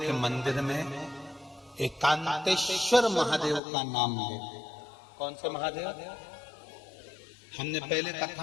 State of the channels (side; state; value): right; drops out; at 3.6 s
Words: के मंदिर में एकांतेश्वर महादेव का नाम ले। कौन से महादेव? हमने पहले